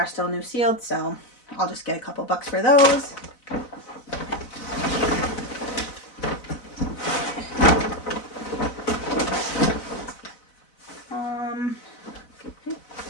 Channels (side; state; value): right; late; 4.0 ms